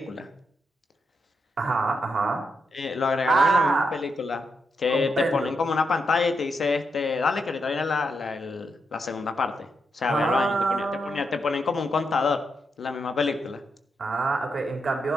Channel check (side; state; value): both; normal; correlation 0.82